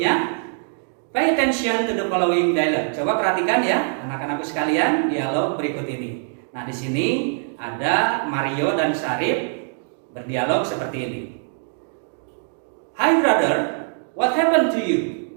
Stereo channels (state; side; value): silent; left; digital silence